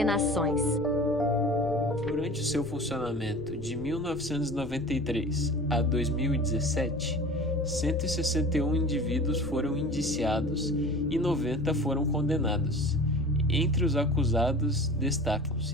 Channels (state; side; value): noise; left; rumble, 16 dB below the sound